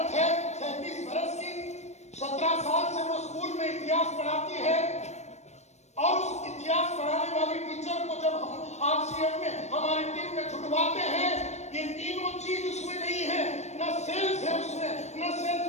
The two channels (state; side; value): late; right; 0.32 ms